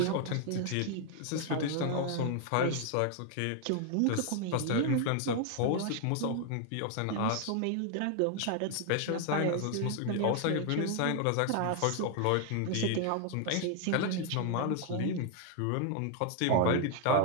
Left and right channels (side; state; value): both; different; correlation 0.00